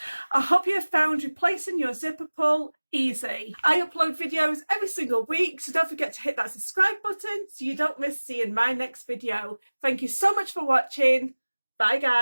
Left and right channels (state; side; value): inverted; both; correlation -1.00